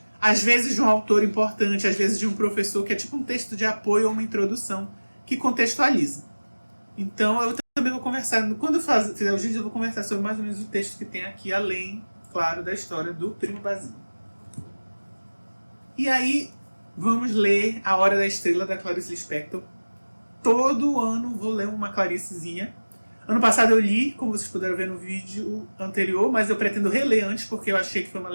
às vezes de um autor importante, às vezes de um professor, que é tipo um texto de apoio ou uma introdução, que contextualiza. Então eu também vou conversar, quando eu fizer os vídeos, eu vou conversar sobre mais ou menos o texto que tem aqui, além, claro, da história do Primo Basílio. E aí, vamos ler A Hora da Estrela, da Clarice Lispector. Todo ano vou ler uma Claricezinha. Ano passado eu li, como vocês puderam ver no vídeo anterior, mas eu pretendo reler antes, porque eu achei que foi uma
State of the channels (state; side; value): inverted; both; correlation -1.00